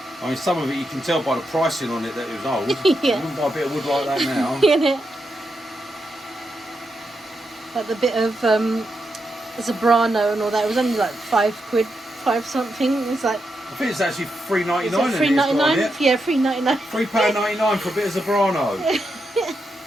I mean, some of it you can tell by the pricing on it that it was old. Yeah. You wouldn't buy a bit of wood like that now. Yeah. Like the bit of Zabrano and all that, it was only like £5, 5 something. It's like I think it's actually $3.99. Is it £3.99? Yeah, £3.99. £3.99 for a bit of Zebrano.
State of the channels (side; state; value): both; normal; correlation 0.84